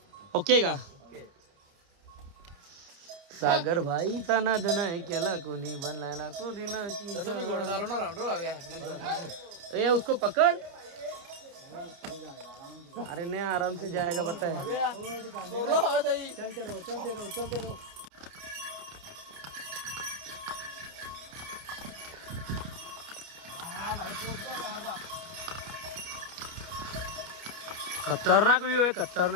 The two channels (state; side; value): late; left; 30 ms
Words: ओके का. सागर भाईचा नाद नाही केला कोणी. बनलायला कोणी नाही. ए उसको पकड़. अरे नहीं आराम से जाएगा पता है. खतरनाक व्ह्यू आहे,